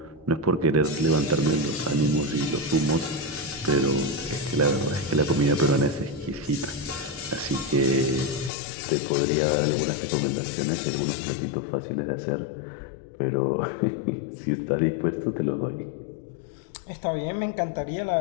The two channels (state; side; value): drops out; right; at 8.5 s